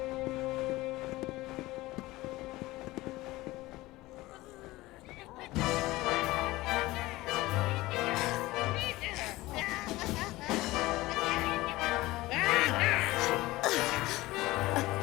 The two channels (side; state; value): right; quieter; 19.0 dB